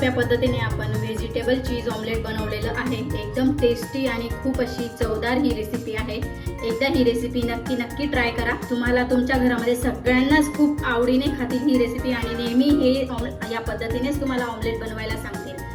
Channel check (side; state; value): both; identical; correlation 1.00